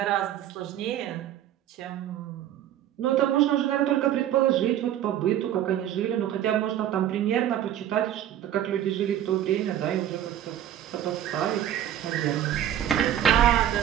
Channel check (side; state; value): left; quieter; 11.2 dB